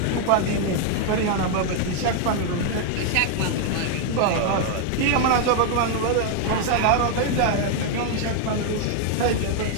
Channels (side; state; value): both; different; correlation 0.00